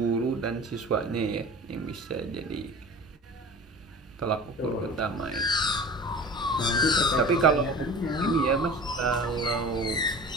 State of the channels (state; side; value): normal; both; correlation 0.37